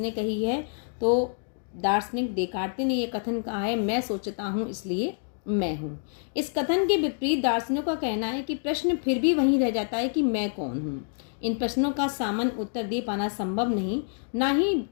कही है, तो दार्शनिक देकार्ते ने यह कथन कहा है, मैं सोचता हूँ इसलिए मैं हूँ। इस कथन के विपरीत दार्शनिकों का कहना है कि प्रश्न फिर भी वहीं रह जाता है कि मैं कौन हूँ। इन प्रश्नों का सामान्य उत्तर दे पाना संभव नहीं, ना ही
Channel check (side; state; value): right; silent; digital silence